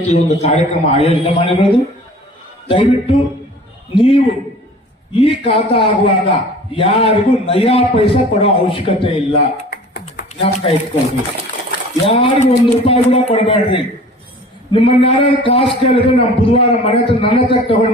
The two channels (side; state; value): both; normal; correlation 0.45